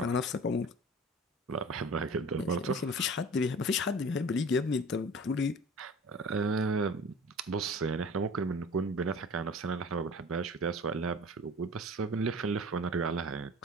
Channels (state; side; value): normal; both; correlation 0.41